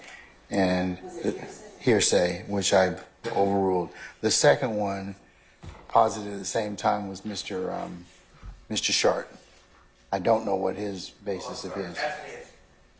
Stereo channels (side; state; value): both; identical; correlation 1.00